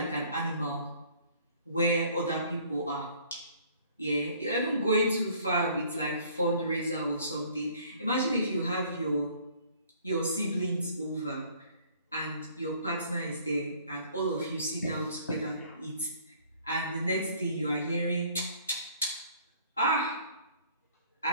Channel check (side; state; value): both; inverted; correlation -0.57